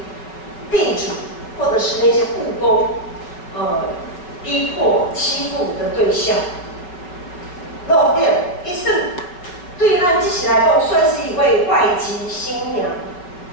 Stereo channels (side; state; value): right; late; 5.4 ms